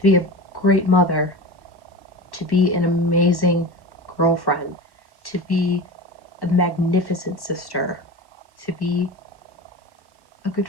be a great mother, to be an amazing girlfriend, to be a magnificent sister, to be a good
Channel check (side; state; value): right; late; 1.1 ms